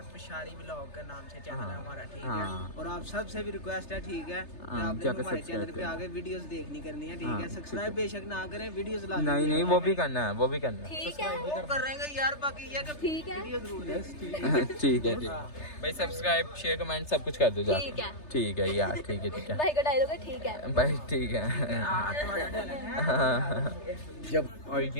पिशारी व्लॉग का नाम से चैनल है हमारा, ठीक हाँ। है। और आप सबसे भी रिक्वेस्ट है, ठीक है, कि आपने हमारे चैनल पे आगे वीडियोस देखनी करनी है, ठीक है। सब्सक्राइब बेशक ना करें, वीडियोस ला नहीं नहीं वो भी करना है, वो भी करना है। ठीक है वो कर रहे हैं यार, बाकी ये कि ठीक है वीडियो जरूर देख। ठीक है भाई, सब्सक्राइब शेयर कमेंट सब कुछ कर दो जाके। ठीक है। ठीक है यार, ठीक है भाई का डायलॉग है ठीक है भाई, ठीक है। और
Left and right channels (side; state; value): right; late; 3.3 ms